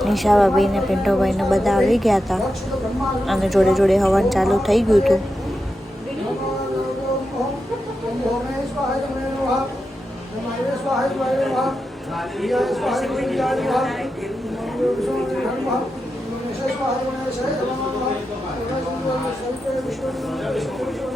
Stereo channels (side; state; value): both; normal; correlation 0.89